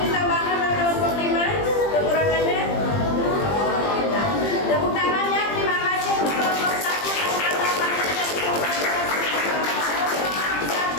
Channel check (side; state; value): right; late; 20 ms